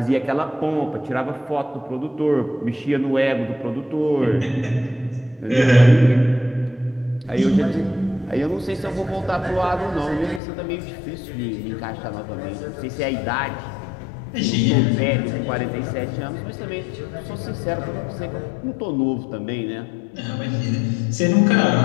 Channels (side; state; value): right; drops out; at 10.4 s